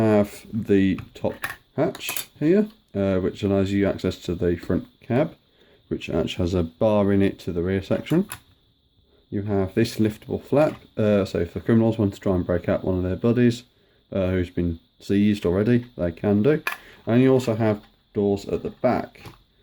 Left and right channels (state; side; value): identical; both; correlation 1.00